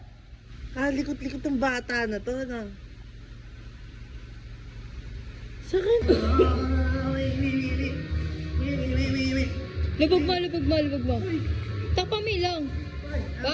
Likot-likot ng bata na to, ano? Sakit. Lubog mo. Takpa mo lang.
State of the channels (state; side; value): identical; both; correlation 1.00